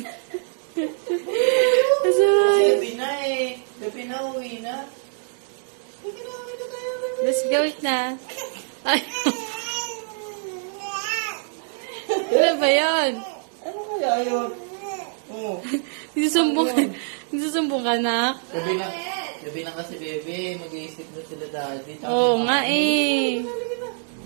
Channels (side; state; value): left; silent; digital silence